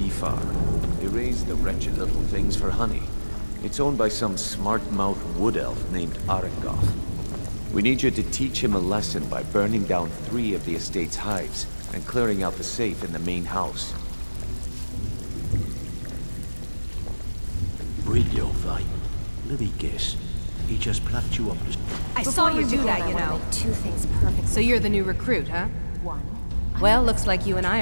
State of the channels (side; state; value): both; inverted; correlation -1.00